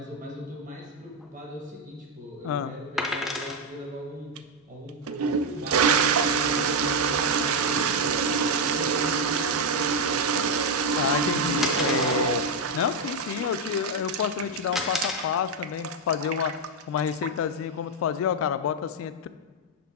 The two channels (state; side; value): normal; both; correlation 0.03